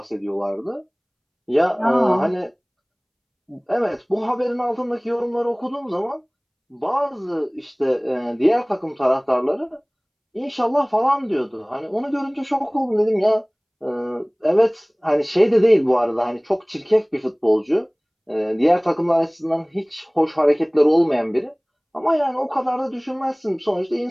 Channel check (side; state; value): both; identical; correlation 1.00